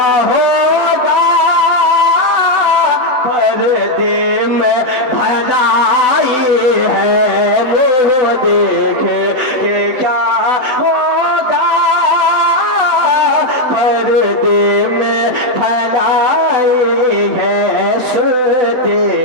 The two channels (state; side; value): late; left; 8.0 ms